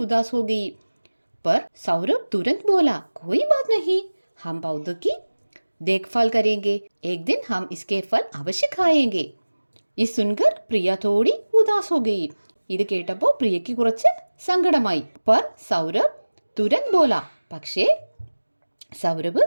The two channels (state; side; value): inverted; both; correlation -1.00